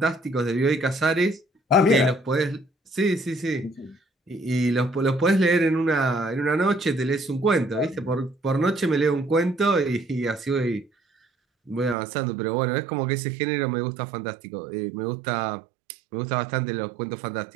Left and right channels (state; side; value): drops out; left; at 12.0 s